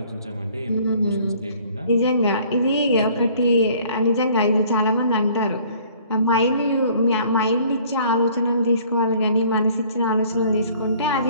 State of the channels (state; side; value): inverted; both; correlation -0.56